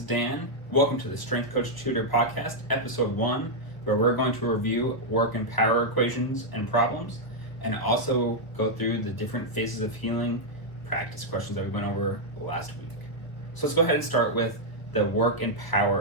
Dan. Welcome to the Strength Coach Tutor Podcast, Episode 1, where we're going to review work and power equations and problems, and also go through the different phases of healing practice questions that we went over last week. So let's go ahead and start with the work and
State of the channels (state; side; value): late; right; 1.0 ms